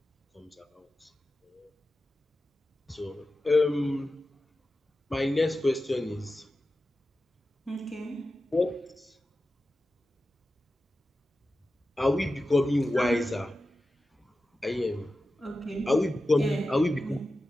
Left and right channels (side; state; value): both; normal; correlation 0.93